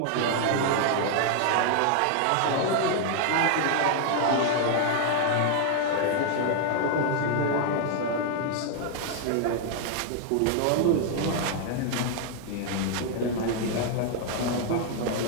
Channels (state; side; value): different; both; correlation 0.00